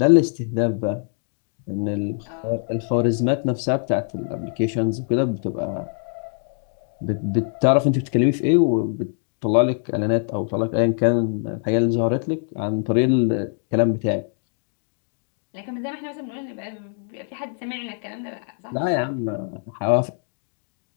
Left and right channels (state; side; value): silent; right; 56 dB below the other